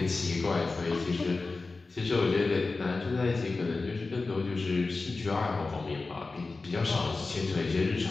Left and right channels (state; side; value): quieter; right; 3.7 dB